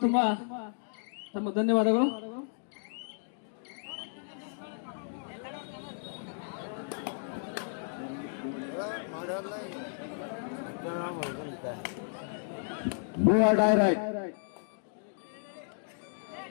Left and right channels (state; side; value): silent; right; digital silence